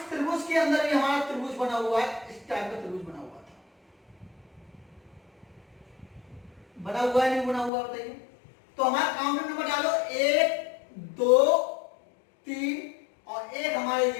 त्रिभुज के अंदर भी हमारा त्रिभुज बना हुआ है, इस टाइप का त्रिभुज बना हुआ था। बना हुआ है नहीं बना हुआ बताइए। तो हमारा काउंटर नंबर डालो 1 2 3, और एक हमारे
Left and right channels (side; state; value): right; drops out; at 7.7 s